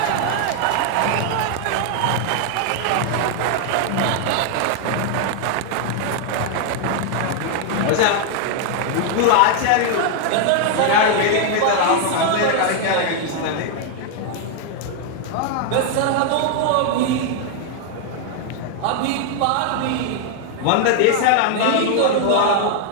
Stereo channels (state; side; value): different; both; correlation 0.00